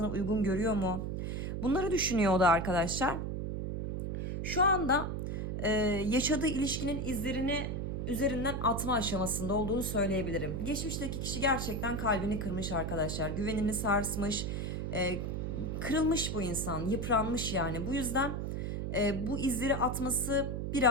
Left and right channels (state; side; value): noise; right; hum, 2 dB below the sound